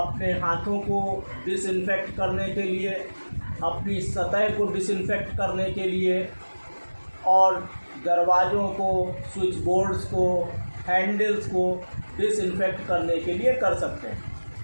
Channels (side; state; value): both; inverted; correlation -1.00